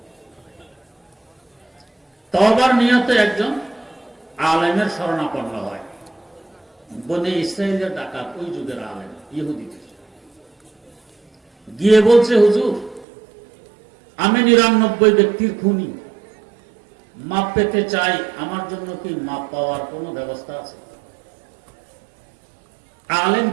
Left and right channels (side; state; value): left; drops out; at 13.1 s